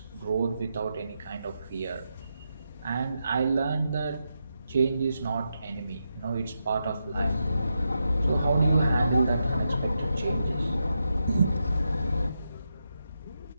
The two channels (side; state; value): both; inverted; correlation -0.86